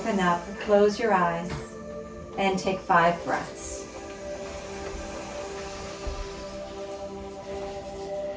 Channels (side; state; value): both; identical; correlation 1.00